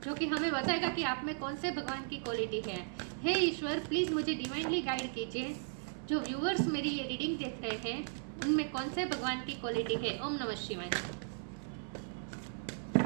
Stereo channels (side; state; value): left; silent; 54 dB below the other